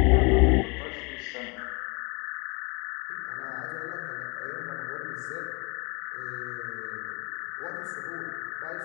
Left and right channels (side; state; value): right; quieter; 30.3 dB